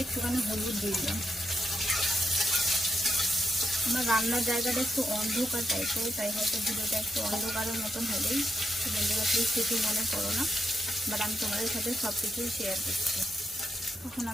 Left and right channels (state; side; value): normal; both; correlation 0.81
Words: একটুখানি হলুদ দিয়ে দিলাম। আমার রান্নার জায়গাটা একটু অন্ধকার টাইপের, তাই হয়তো ভিডিওটা একটু অন্ধকারের মতন হলেই বন্ধুরা প্লিজ কিছু মনে করো না, বাট আমি তোমাদের সাথে সব কিছুই শেয়ার করছি। এখন